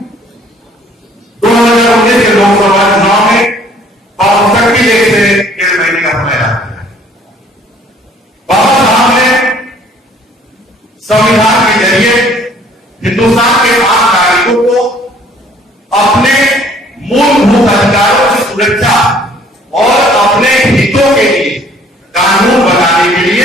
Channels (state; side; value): normal; both; correlation 0.58